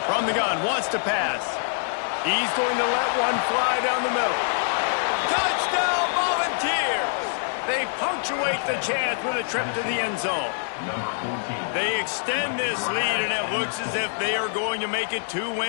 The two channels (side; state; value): right; silent; digital silence